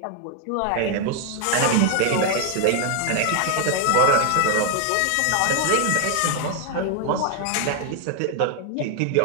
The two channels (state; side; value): different; both; correlation 0.00